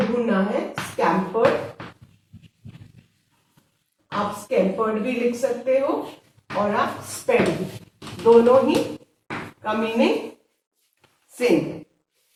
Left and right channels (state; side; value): identical; both; correlation 1.00